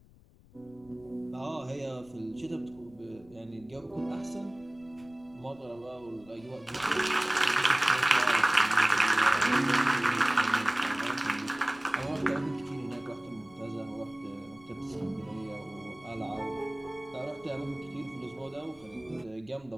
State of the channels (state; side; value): noise; left; rumble, 26 dB below the sound